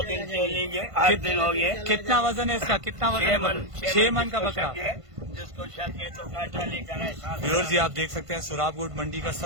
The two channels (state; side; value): late; left; 1.5 ms